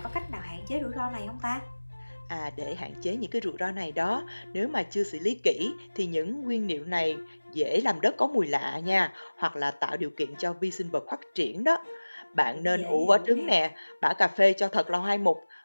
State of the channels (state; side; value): inverted; both; correlation -1.00